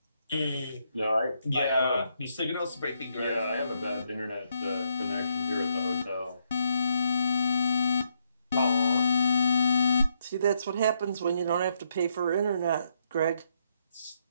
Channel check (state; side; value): inverted; both; correlation -0.75